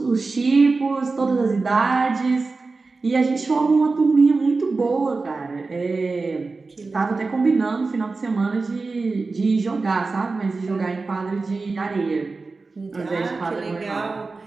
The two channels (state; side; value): quieter; left; 3.9 dB